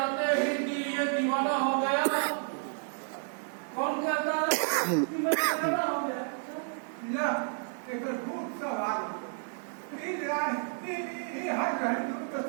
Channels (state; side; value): silent; left; 57 dB below the other